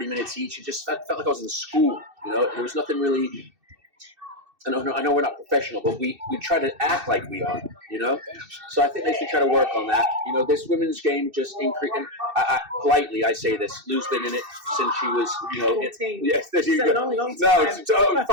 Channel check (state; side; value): late; left; 2.6 ms